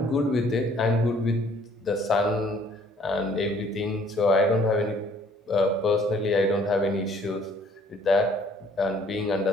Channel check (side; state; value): both; normal; correlation 0.59